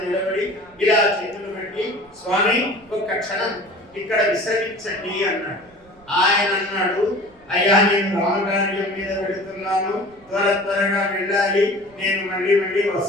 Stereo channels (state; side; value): noise; right; rumble, 30 dB below the sound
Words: నిలబడి ఇలా చేతులు పెట్టి, స్వామి ఒక్క క్షణం ఇక్కడ విశ్రమించండి అన్నాడు. ఆయన అన్నాడు, అయ్యా నేను రామకార్యం మీద పెడుతున్నాను, త్వరగా వెళ్ళాలి, నేను మళ్ళీ